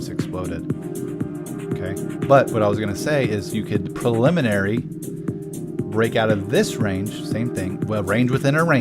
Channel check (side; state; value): both; identical; correlation 1.00